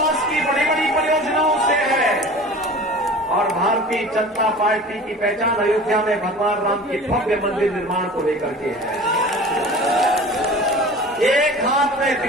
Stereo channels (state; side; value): normal; both; correlation 0.40